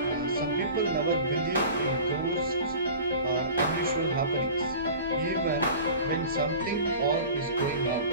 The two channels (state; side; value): inverted; both; correlation -0.39